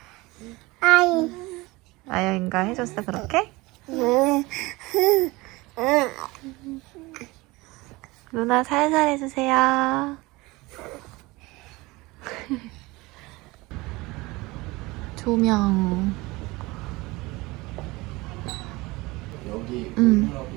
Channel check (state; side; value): quieter; left; 22.1 dB